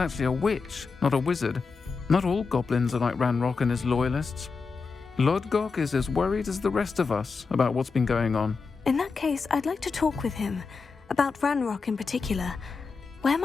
a witch, not a wizard. Not all goblins are like Ranrock and his loyalists. Lodgok is as worried as the rest of us about what's been going on. In that case, I'd like to talk with him. About Ranrock in particular. Where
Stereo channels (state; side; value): quieter; right; 4.8 dB